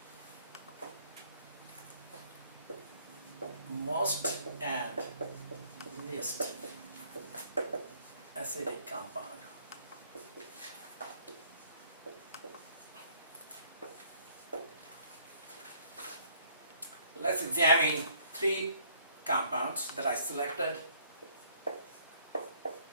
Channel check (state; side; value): inverted; both; correlation -0.62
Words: Most and least acidic compound. Let's examine 3 compounds that I selected.